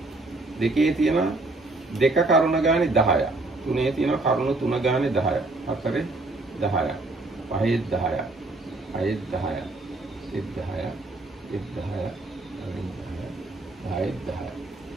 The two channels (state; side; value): quieter; left; 3.0 dB